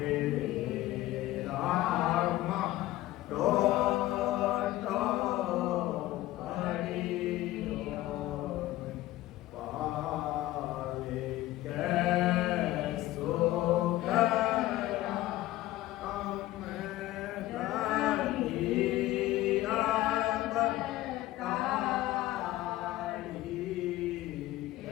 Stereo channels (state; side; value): quieter; right; 16.1 dB